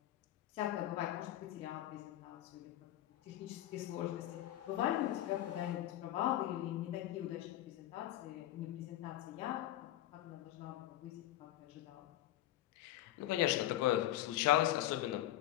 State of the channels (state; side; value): quieter; right; 13.8 dB